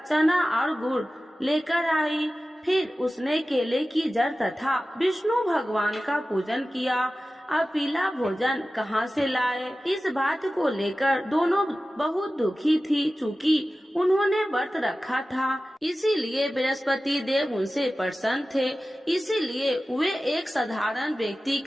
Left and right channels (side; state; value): both; normal; correlation 0.95